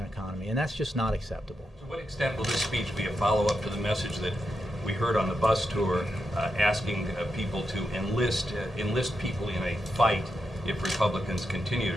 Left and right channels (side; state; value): both; normal; correlation 0.86